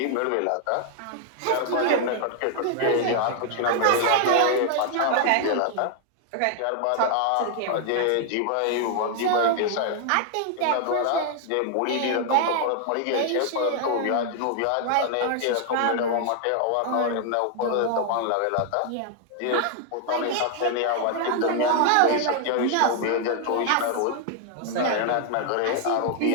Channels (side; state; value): both; different; correlation 0.00